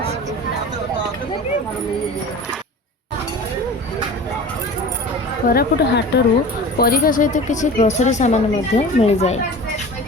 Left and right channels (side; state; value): both; normal; correlation 0.37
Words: कोरापुट हाटरू परिवा सहित किसी ग्रोसरी सामान मिल जाए।